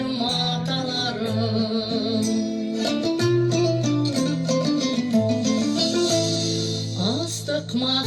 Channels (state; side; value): identical; both; correlation 1.00